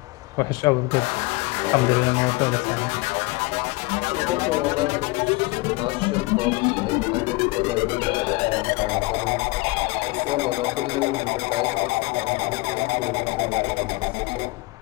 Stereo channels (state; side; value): quieter; right; 23.6 dB